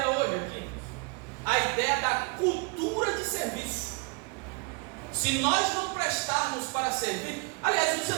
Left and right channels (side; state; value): left; quieter; 30.3 dB